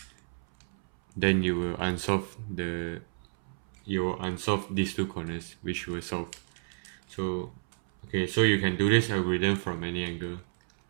then you will unsolve these two corners which were solved. So okay, so you can do this algorithm from any angle.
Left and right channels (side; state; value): left; silent; 58 dB below the other